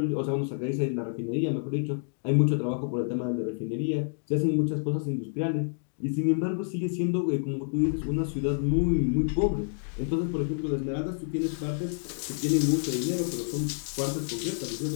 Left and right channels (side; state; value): right; silent; digital silence